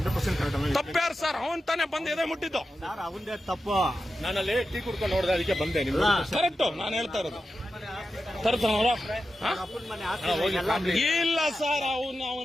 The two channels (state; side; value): normal; both; correlation 0.91